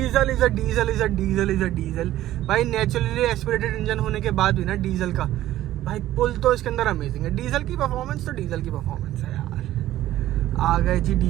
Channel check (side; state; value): left; quieter; 14.1 dB